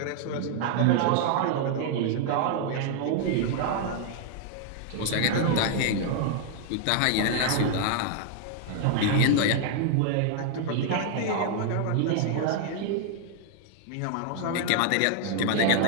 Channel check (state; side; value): different; both; correlation 0.00